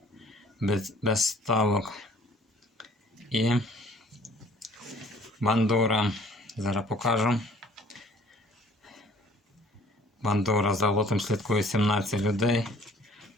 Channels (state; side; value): normal; both; correlation 0.54